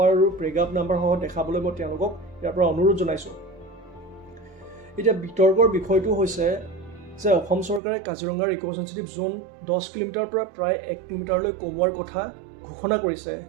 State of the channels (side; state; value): left; drops out; at 7.8 s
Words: আৰু পেৰাগ্ৰাফ নাম্বাৰ সহ দেখাবলৈ মই তেওঁলোকক ইয়াৰ পৰা অনুৰোধ জনাইছোঁ। এতিয়া বিতৰ্কৰ বিষয়টো হৈছে যে অসম চৰকাৰে কাজিৰঙাৰ ইক' চেনচিটিভ জোন 10 কিলোমিটাৰৰ পৰা প্ৰায় 1 কিলোমিটাৰলৈ কমোৱাৰ কথা ঘোষণা কৰিছে।